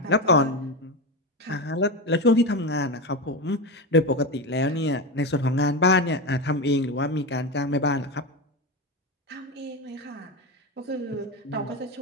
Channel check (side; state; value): both; normal; correlation 0.18